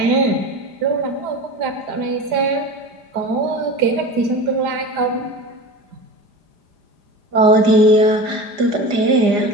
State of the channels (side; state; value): left; late; 5.0 ms